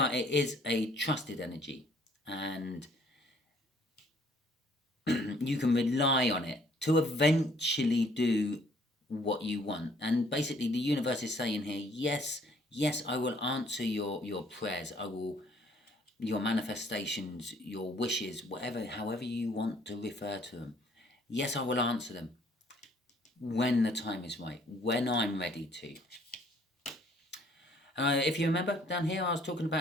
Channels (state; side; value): normal; both; correlation 0.62